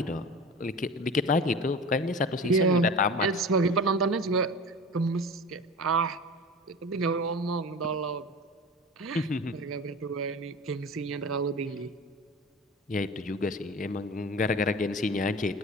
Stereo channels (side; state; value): both; normal; correlation 0.34